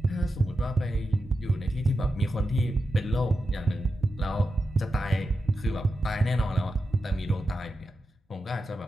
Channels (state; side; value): normal; both; correlation 0.89